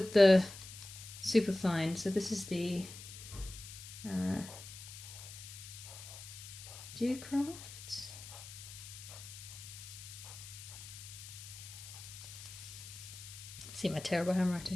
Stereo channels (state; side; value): noise; left; hiss, 13 dB below the sound